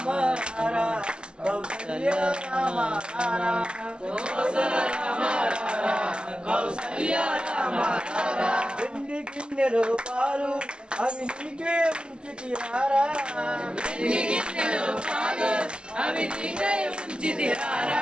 రారా కౌసల్య రామ రారా కోసల రామ రారా కౌసల్య రామ రారా వెండి గిన్నెలో పాలు అవి నీకే ఉంచితిరారా వెండి గిన్నెలో పాలు అవి నీకే ఉంచితిరారా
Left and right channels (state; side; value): late; left; 0.050 ms